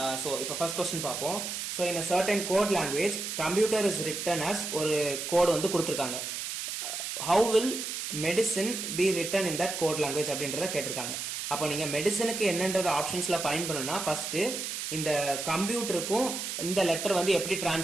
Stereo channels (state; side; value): noise; right; hiss, 4 dB below the sound